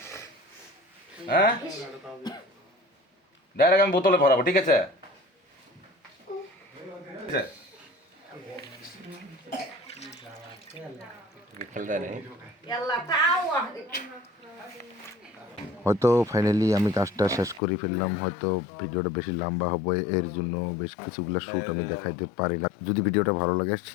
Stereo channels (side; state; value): right; drops out; at 17.6 s